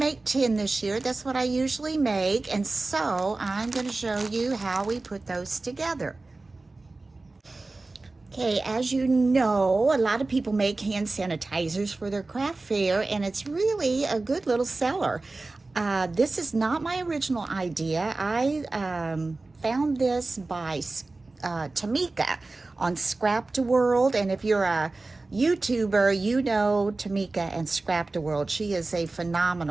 10 this year. That's what I usually make. And so I'm going to show you how we put those together. Okay, as you know, a lot of people make hand sanitizers for their craft fair, and it's really a good little seller. This is not my original idea. I found this by Tamika on ScrapdaWorld, and if you're a YouTuber, you know Tamika and ScrapdaWorld. She is a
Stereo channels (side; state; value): left; quieter; 3.3 dB